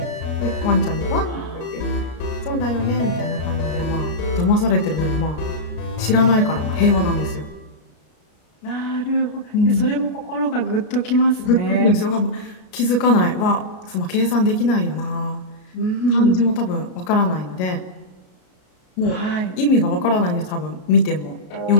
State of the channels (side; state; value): right; late; 33 ms